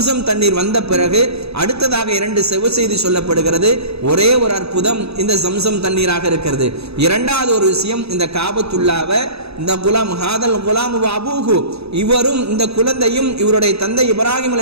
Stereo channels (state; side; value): late; left; 0.78 ms